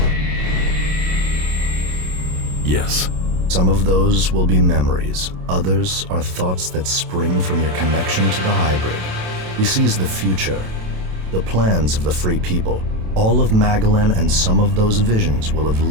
Yes. Some of those will be memories. Others are thoughts that spring from your connection to the hybrid. He sees the future, the plans of the free people. All of Magalan and some of those visions will have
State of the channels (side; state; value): left; late; 27 ms